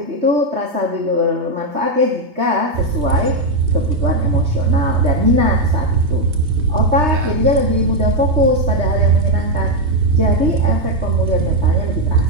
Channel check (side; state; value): left; late; 3.3 ms